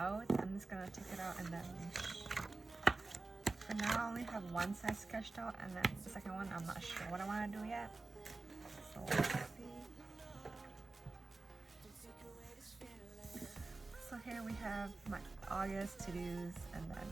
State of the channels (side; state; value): left; quieter; 3.4 dB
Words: I'm just gonna take it out and then for now I only have one side sketched out, and then the second one I'm not sure what I want to do yet. So let's see. So here we have my August to-dos and